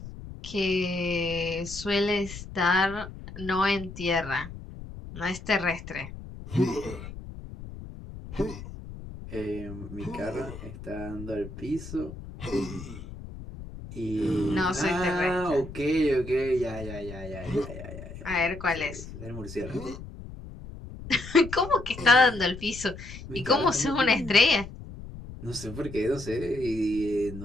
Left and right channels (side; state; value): left; noise; rumble, 12 dB below the sound